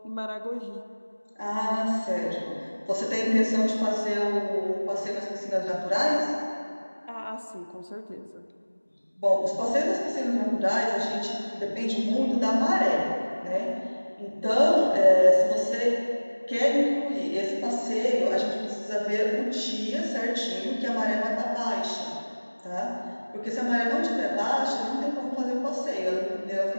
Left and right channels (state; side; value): inverted; both; correlation -1.00